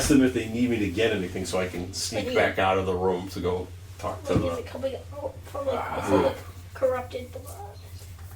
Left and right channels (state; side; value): identical; both; correlation 1.00